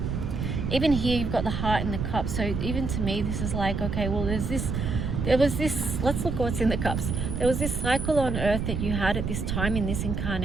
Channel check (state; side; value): noise; right; rumble, 2 dB below the sound